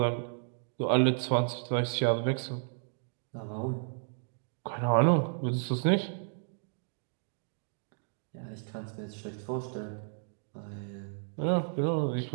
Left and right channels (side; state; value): left; silent; digital silence